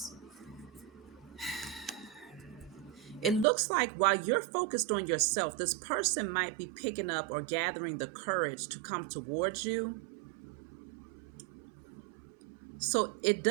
it looks like while you're focused on yourself, this person might be picking up or gathering the courage to come towards you. So it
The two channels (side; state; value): left; drops out; at 3.5 s